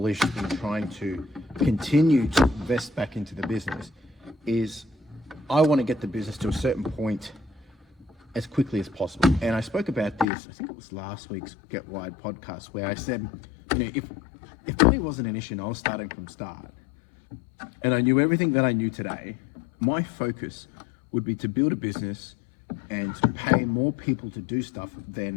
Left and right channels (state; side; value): drops out; right; at 10.2 s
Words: in trying to continue to invest back into the business is I want to get the business to a certain point as quickly as possible. And I spoke about this, I think it was last week's Get Wide podcast, where I said, if money wasn't an issue and I was starting from start, and I knew everything that I knew today, my focus would be to build a business and to pay more people to do stuff